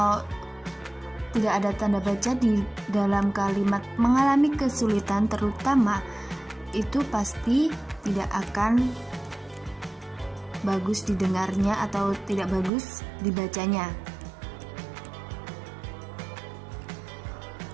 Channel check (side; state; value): left; drops out; at 12.7 s